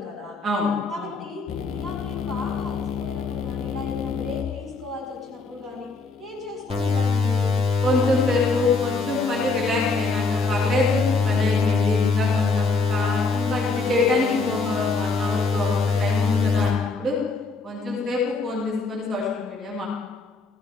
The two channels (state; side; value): quieter; right; 3.9 dB